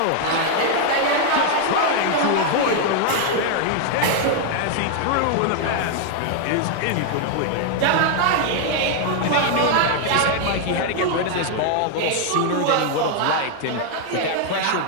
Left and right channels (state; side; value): different; both; correlation 0.00